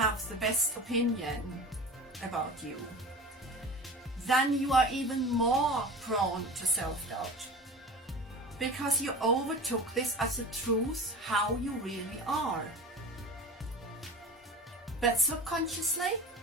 the best opinion about you, then you are even more prone to self-doubt, because you overtook this as a truth, how you really are. But subconsciously,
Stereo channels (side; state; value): both; normal; correlation 0.35